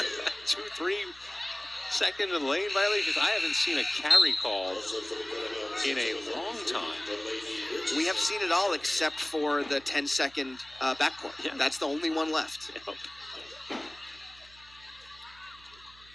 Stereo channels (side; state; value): right; noise; hum, 24 dB below the sound